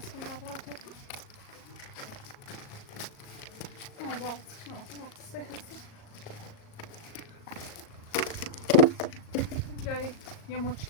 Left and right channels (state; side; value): late; right; 38 ms